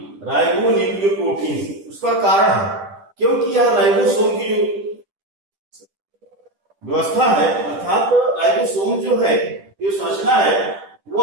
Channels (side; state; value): left; late; 10 ms